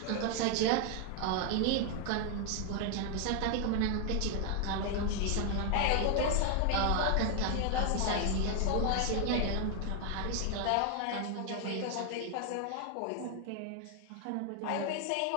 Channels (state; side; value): different; both; correlation 0.00